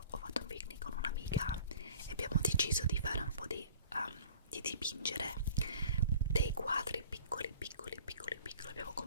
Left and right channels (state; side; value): inverted; both; correlation -0.47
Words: ho fatto un picnic con un'amica e abbiamo deciso di fare un po' di dipingere dei quadri piccoli. Abbiamo